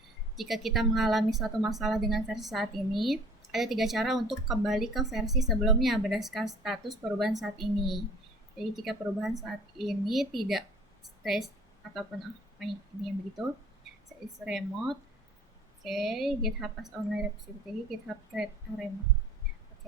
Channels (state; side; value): normal; both; correlation 0.49